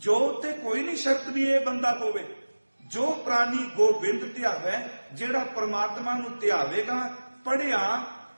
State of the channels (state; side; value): inverted; both; correlation -1.00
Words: ते कोई नहीं शर्त भी ये बंदा होवे। जो प्राणी गोबिंद ध्यावै, जेड़ा परमात्मा नूं ध्यावेगा, पढ़िया